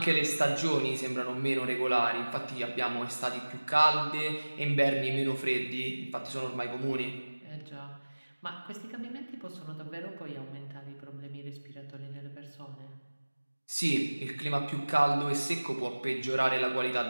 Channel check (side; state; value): both; inverted; correlation -1.00